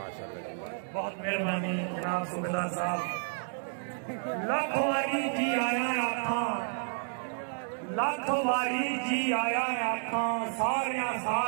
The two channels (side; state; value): left; silent; digital silence